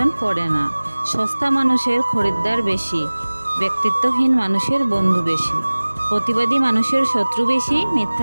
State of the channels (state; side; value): inverted; both; correlation -1.00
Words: পড়ে না। সস্তা মানুষের খরিদ্দার বেশি, ব্যক্তিত্বহীন মানুষের বন্ধু বেশি, প্রতিবাদী মানুষের শত্রু বেশি,